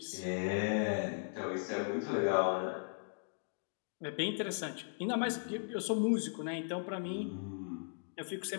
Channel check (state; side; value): silent; right; digital silence